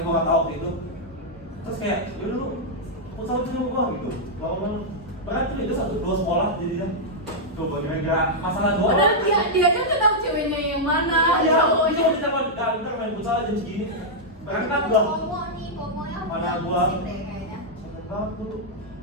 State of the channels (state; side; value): normal; both; correlation -0.05